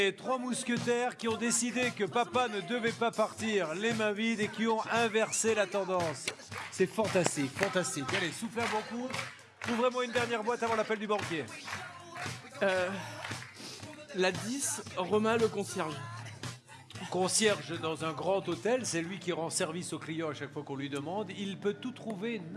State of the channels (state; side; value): identical; both; correlation 1.00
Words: 3 mousquetaires qui ont décidé que papa ne devait pas partir les mains vides et qui ont inversé la tendance. C'est fantastique, fantastique. Allez, soufflez un bon coup. Ouvrez-moi une dernière boîte avant l'appel du banquier. La 10, Romain le concierge. Concierge dans un grand hôtel, c'est lui qui rend service aux clients à chaque fois qu'on lui demande. Il peut tout trouver